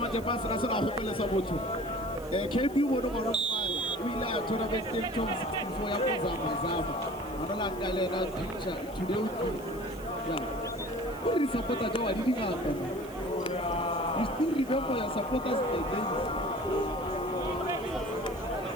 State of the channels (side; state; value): left; noise; hiss, 21 dB below the sound